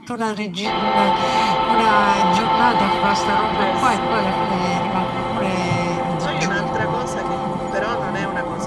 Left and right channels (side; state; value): both; identical; correlation 1.00